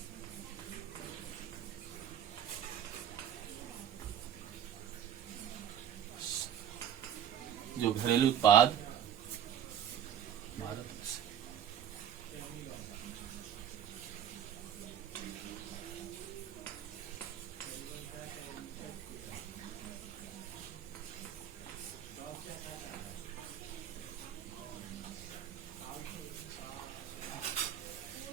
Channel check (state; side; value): quieter; left; 9.6 dB